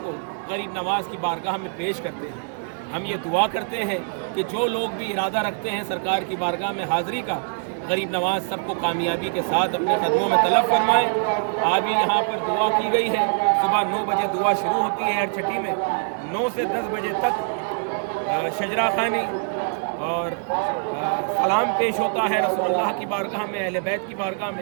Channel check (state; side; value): silent; left; 63 dB below the other